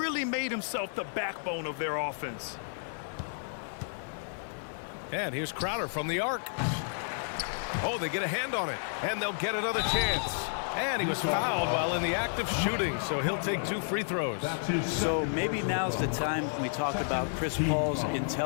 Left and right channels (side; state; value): right; silent; digital silence